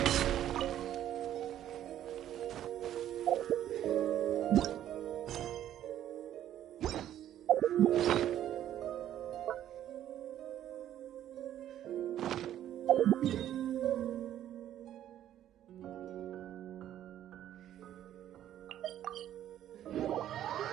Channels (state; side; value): quieter; left; 11.5 dB